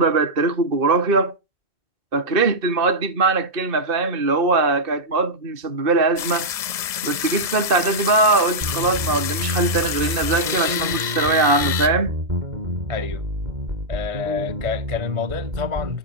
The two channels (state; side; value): late; left; 1.7 ms